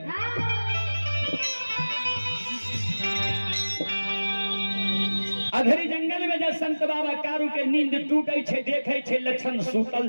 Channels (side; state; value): both; inverted; correlation -1.00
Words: अधरी जंगल में जब संत बाबा कारू के नींद टूटे छे देखे छे लक्षण